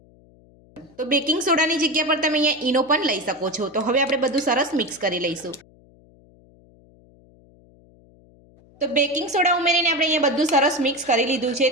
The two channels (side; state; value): left; noise; hum, 28 dB below the sound